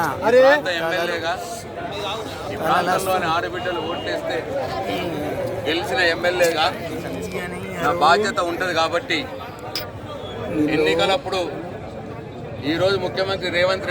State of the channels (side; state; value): both; identical; correlation 1.00